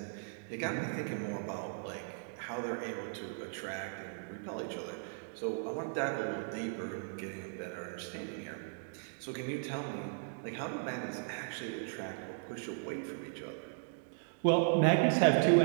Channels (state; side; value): silent; left; digital silence